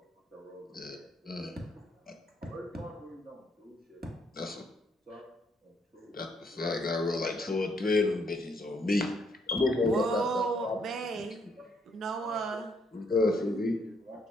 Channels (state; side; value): normal; both; correlation 0.71